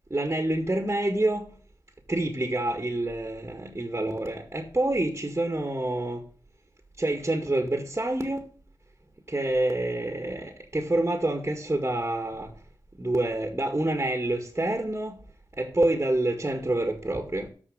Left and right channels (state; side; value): normal; both; correlation 0.88